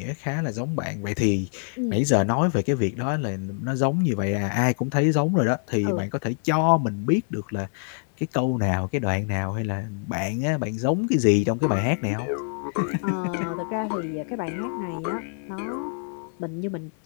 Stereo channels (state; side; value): silent; right; 61 dB below the other